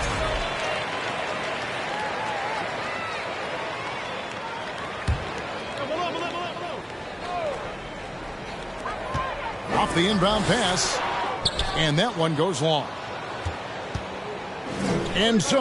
Off the inbound pass. And that one goes long. And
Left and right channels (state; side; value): identical; both; correlation 1.00